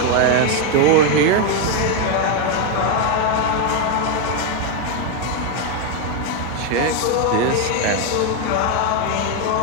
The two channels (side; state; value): both; different; correlation 0.01